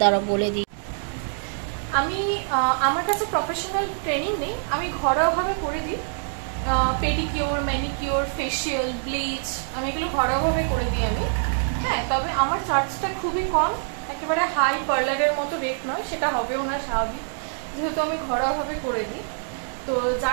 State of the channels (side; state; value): left; silent; digital silence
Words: বলে দিই। আমি আমার কাছে প্রফেশনাল ট্রেনিং নেই, আমি ঘরোয়াভাবে করে দিই। পেডিকিওর, ম্যানিকিওর, ফেশিয়াল, ব্লিচ, আমি এগুলো ঘরোয়াভাবে করে দিই আমি। হ্যাঁ, তবে আমার চার্জটা খুবই কম, একেবারে হাই পার্লারের মতো রেট নয়, সেটা হবেও না স্বাভাবিক, যেহেতু আমি ঘরোয়াভাবে করে দিই। তো